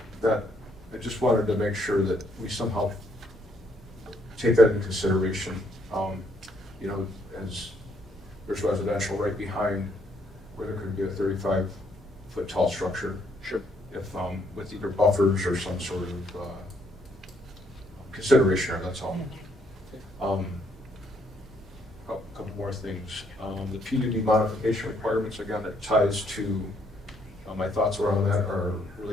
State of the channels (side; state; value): both; normal; correlation 0.70